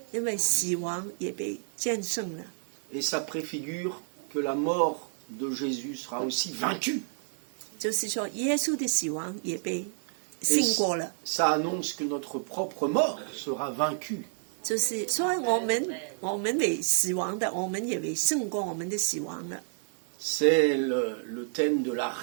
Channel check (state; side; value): silent; left; digital silence